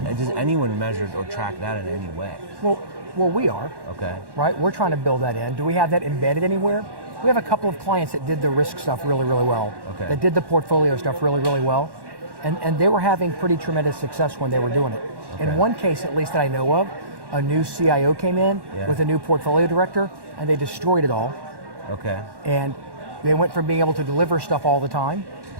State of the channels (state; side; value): late; left; 1.1 ms